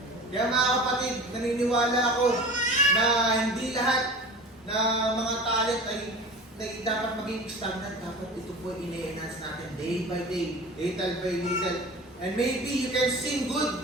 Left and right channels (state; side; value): normal; both; correlation 0.37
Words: Kaya mga kapatid, naniniwala ako na hindi lahat na mga talent ay dapat maging stagnant. Dapat ito po ine-enhance natin day by day, little by little. And maybe you can sing